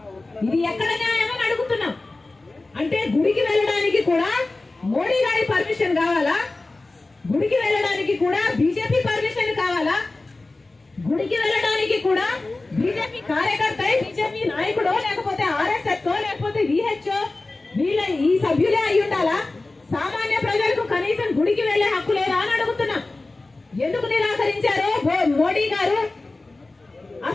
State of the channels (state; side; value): quieter; right; 3.2 dB